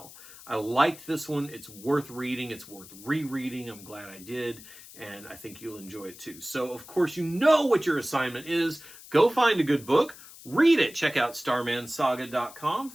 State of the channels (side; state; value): left; noise; hiss, 18 dB below the sound